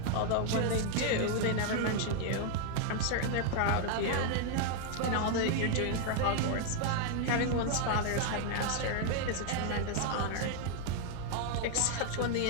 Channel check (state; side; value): different; both; correlation 0.00